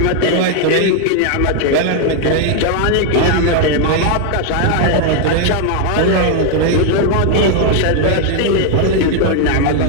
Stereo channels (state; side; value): different; both; correlation 0.01